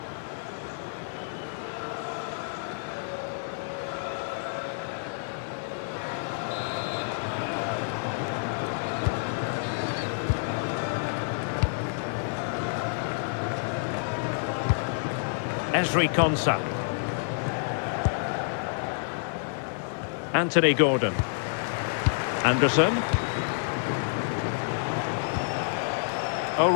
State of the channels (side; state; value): right; silent; digital silence